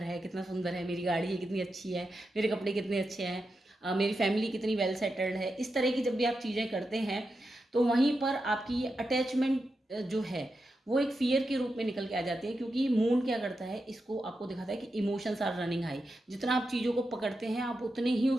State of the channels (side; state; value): both; normal; correlation 0.88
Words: है कितना सुंदर है, मेरी गाड़ी है कितनी अच्छी है, मेरे कपड़े कितने अच्छे हैं, मेरी फैमिली कितनी वेल सेटल्ड है, इस तरह की जब भी आप चीज़ें करते हैं तो वहीं पर आपकी ये अटैचमेंट जो है वो एक फियर के रूप में निकल के आ जाती है। क्योंकि मून क्या करता है, इसको आपको दिखाता है कि इमोशंस आर रनिंग हाई। जितना आप चीज़ों को पकड़ते हैं आप उतने ही